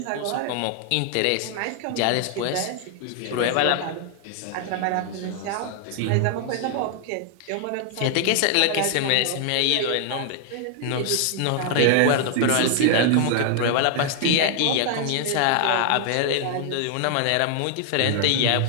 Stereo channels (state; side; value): different; both; correlation 0.00